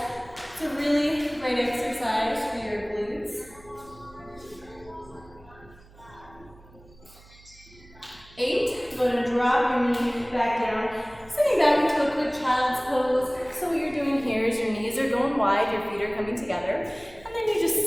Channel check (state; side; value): noise; right; hum, 24 dB below the sound